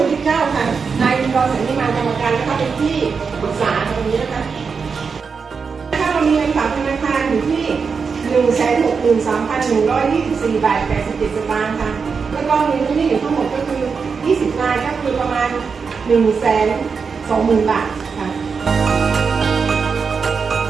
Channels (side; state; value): left; quieter; 5.5 dB